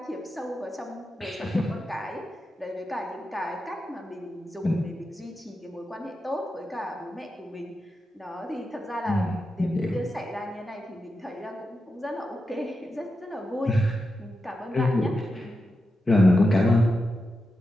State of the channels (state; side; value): normal; both; correlation 0.89